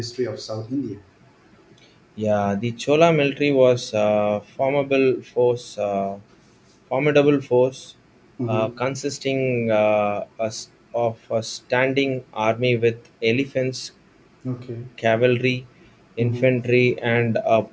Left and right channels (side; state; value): both; identical; correlation 1.00